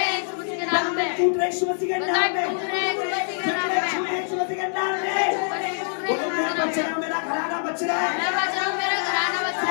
में, टूट रहे यीशु मसीह के नाम में, यीशु मसीह के नाम में, बोलो मैं बच रहा हूँ, मेरा घराना बच रहा है,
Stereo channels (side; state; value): right; silent; 62 dB below the other